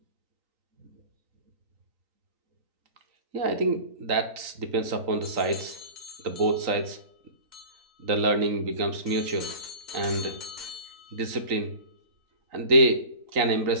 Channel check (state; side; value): late; left; 3.9 ms